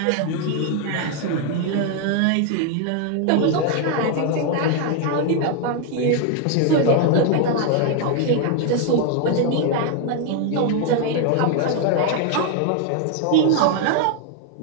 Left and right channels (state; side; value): different; both; correlation 0.00